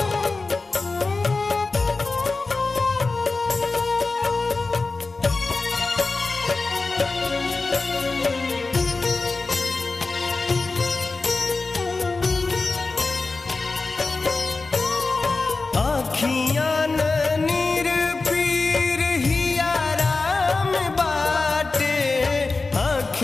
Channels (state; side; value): quieter; right; 3.7 dB